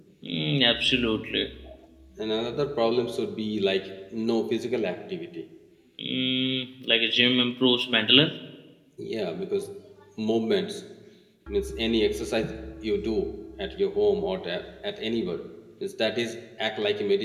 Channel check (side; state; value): both; identical; correlation 1.00